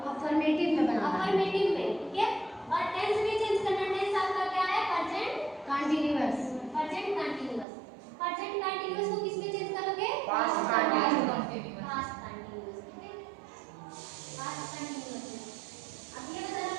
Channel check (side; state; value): left; drops out; at 7.7 s